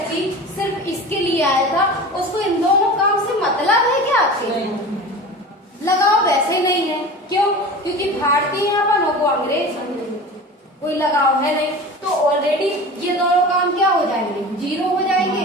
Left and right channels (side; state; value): both; normal; correlation 0.34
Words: सिर्फ इसके लिए आया था उसको इन दोनों काम से मतलब है क्या आपके, लगाव वैसे ही नहीं है। क्यों, क्योंकि भारतीयपन को अंग्रेज कोई लगाव है नहीं। तो ऑलरेडी ये दोनों काम क्या हो जाएंगे,